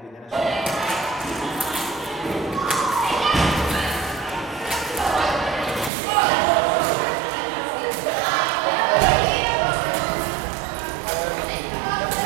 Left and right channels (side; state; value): left; drops out; at 5.9 s